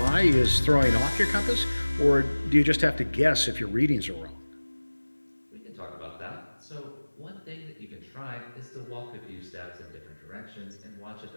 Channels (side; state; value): both; inverted; correlation -1.00